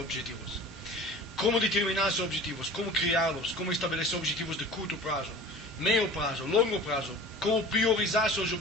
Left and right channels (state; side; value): normal; both; correlation 0.41